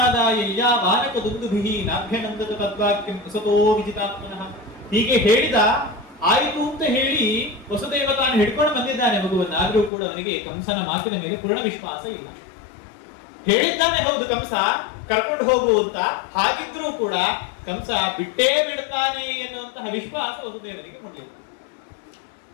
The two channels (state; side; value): drops out; right; at 9.9 s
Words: ವಾನಕ ದುಂದುಭಿಹಿ ನಾಭ್ಯನಂದತ ತದ್ವಾಕ್ಯಂ ವಸತೋ ವಿಜಿತಾತ್ಮನಃ. ಹೀಗೆ ಹೇಳಿದ, ಆಯಿತು ಅಂತ ಹೇಳಿ ವಸುದೇವ ತಾನು ಹಿಡ್ಕೊಂಡು ಬಂದಿದ್ದಾನೆ ಮಗುವನ್ನು. ಆದ್ರೂ ಕೂಡ ಅವನಿಗೆ ಕಂಸನ ಮಾತಿನ ಮೇಲೆ ಪೂರ್ಣ ವಿಶ್ವಾಸ ಇಲ್ಲ. ಹೇಳಿದ್ದಾನೆ ಹೌದು ಕಂಸ ಕರ್ಕೊಂಡು ಹೋಗು ಅಂತ, ಹಾಗಿದ್ರೂ ಕೂಡ ಕಂಸ ಬಿಟ್ಟೇ ಬಿಡ್ತಾನೆ ಎನ್ನುವಂತಹ ವಿಶ್ವಾಸ ವಸುದೇವನಿಗೆ ಹೊಂದಿಲ್ಲ.